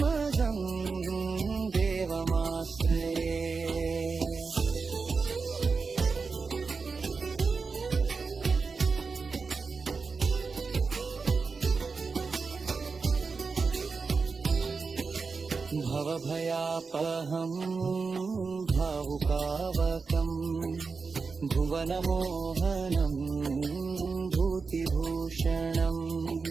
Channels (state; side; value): quieter; left; 4.7 dB